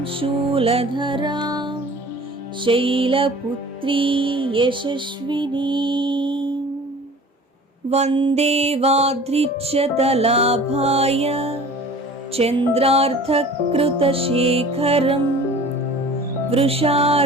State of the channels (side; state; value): both; normal; correlation 0.44